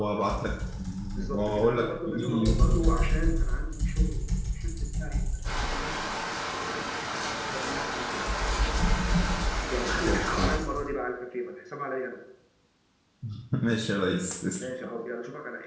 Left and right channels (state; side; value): identical; both; correlation 1.00